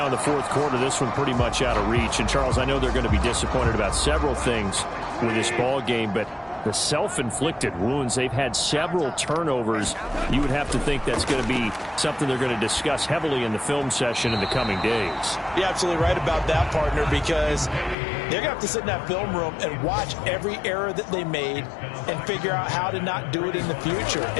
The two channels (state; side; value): drops out; right; at 17.9 s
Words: in the fourth quarter, this one pretty much out of reach. And, Charles, I know they're going to be disappointed about several things with this ball game, but the self-inflicted wounds, they've had several turnovers. You would have to think that's going to be something they're going to discuss heavily in the film session in the coming days. You're absolutely right about that, partner, because they're going to have to sit in that film room and watch every error that they made and figure out how to not do it in the future.